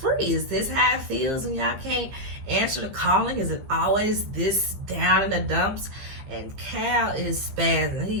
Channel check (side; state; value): left; late; 15 ms